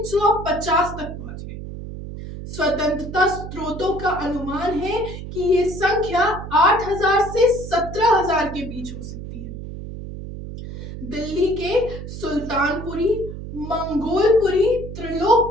तक पहुंच गई। स्वतंत्रता स्रोतों का अनुमान है कि ये संख्या 8000 से 17000 के बीच हो सकती है। दिल्ली के सुल्तानपुरी, मंगोलपुरी,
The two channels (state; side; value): noise; right; hum, 10 dB below the sound